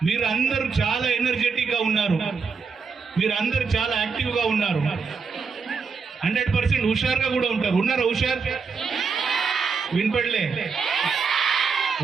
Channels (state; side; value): quieter; left; 5.3 dB